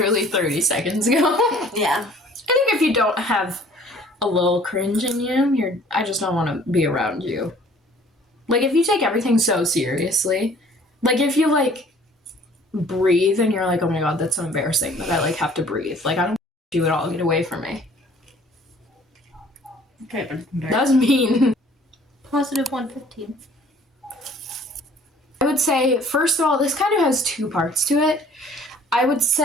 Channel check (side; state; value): both; normal; correlation 0.54